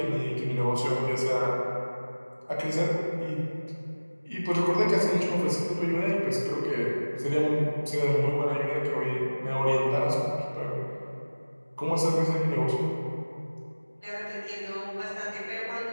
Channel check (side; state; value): both; inverted; correlation -1.00